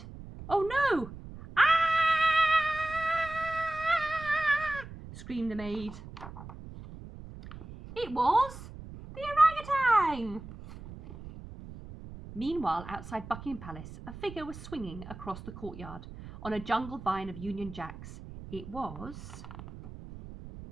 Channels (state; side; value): noise; right; rumble, 14 dB below the sound